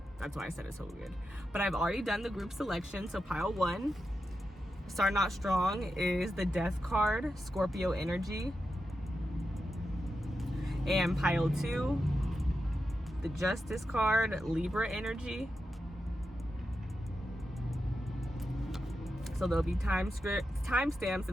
That's why I said it so weird. But I've already done the group selection. So pile 1, starting out strong, is the Death card, Scorpio energy. And pile 2, the Justice card, Libra energy. So there'll be timestamps in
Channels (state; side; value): normal; both; correlation 0.89